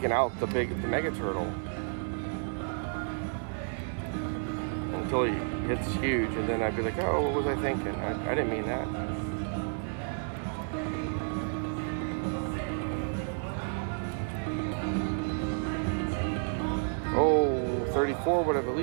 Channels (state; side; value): silent; left; 57 dB below the other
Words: out the mega turtle until he hits huge, and then I'd be like, oh, what was I thinking? I didn't mean that. Oh, 34 would have at